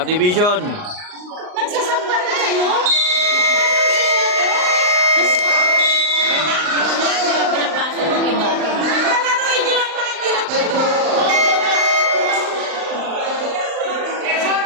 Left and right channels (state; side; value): late; left; 39 ms